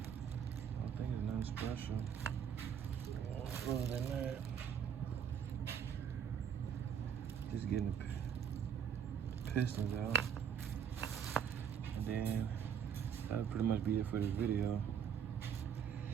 don't think it's nothing special. Other than that, just getting the pistons out. And then that'll pretty much be it for this video.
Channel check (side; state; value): left; quieter; 7.9 dB